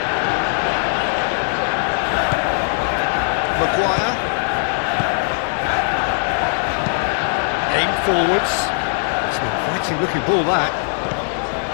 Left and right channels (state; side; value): silent; right; digital silence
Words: forwards. It's an inviting looking ball, that.